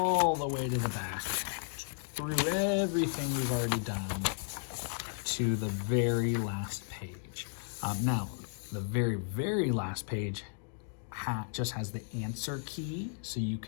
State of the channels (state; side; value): silent; right; digital silence